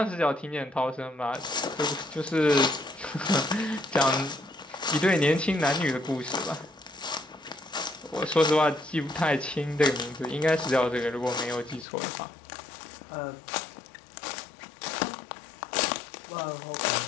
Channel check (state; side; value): drops out; right; at 11.9 s